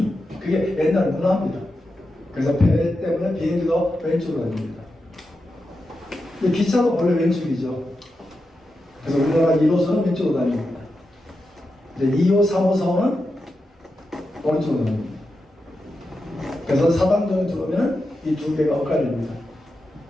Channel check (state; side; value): normal; both; correlation 0.89